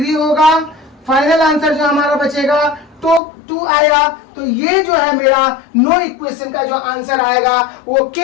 होगा। फाइनल आंसर जो हमारा बचेगा तो 2 आएगा। तो ये जो है मेरा नो इक्वेशन का जो आंसर आएगा वो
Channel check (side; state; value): right; drops out; at 3.2 s